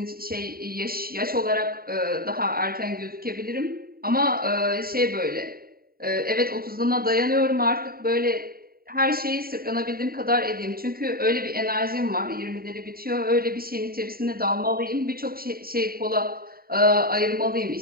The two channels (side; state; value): left; late; 0.43 ms